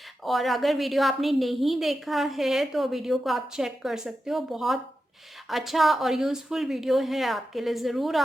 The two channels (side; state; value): both; normal; correlation 0.90